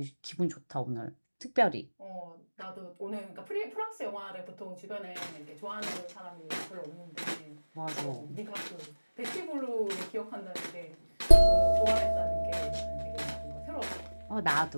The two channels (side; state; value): both; inverted; correlation -1.00